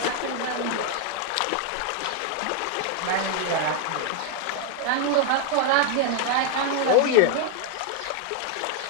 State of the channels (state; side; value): different; both; correlation 0.00